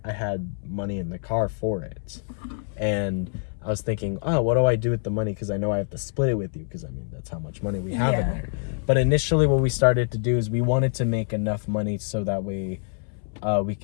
money in the car for it, and I was thinking, oh, what do I do with the money? Because I know I have to split it with you, because I mean that's how much money we have in there. But initially what we started to do is we wanted to make enough money so that way we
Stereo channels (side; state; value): right; silent; 61 dB below the other